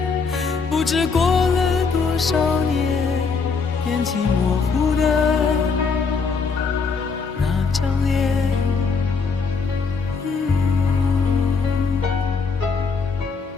不知过了多少年，眼睛模糊的那张脸，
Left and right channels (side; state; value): right; quieter; 4.9 dB